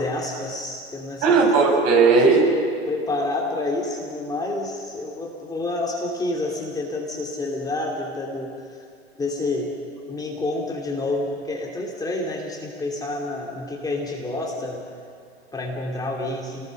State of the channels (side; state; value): both; normal; correlation 0.41